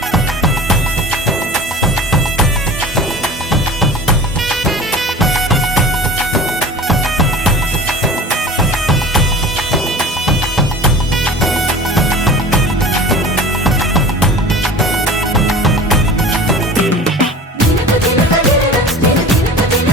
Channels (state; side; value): normal; both; correlation 0.38